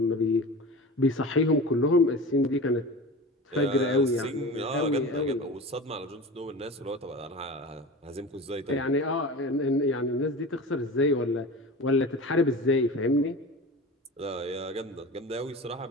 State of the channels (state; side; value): normal; both; correlation 0.33